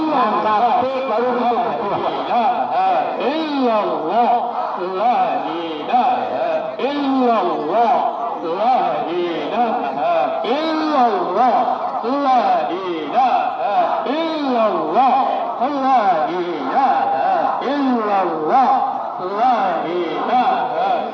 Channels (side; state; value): both; identical; correlation 1.00